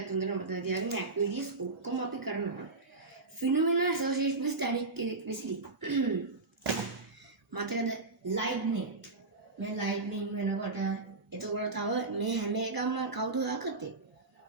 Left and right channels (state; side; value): quieter; left; 3.5 dB